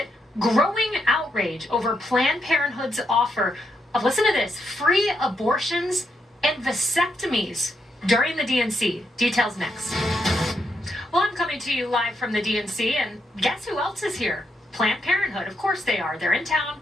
Growing outrage over Planned Parenthood's offer of, listen to this, free abortions and vasectomies during the DNC. Details next. Well, I'm coming to you live from the DNC, and guess who else is here? Planned Parenthood. Of course they are. They're in town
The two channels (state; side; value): normal; both; correlation 0.80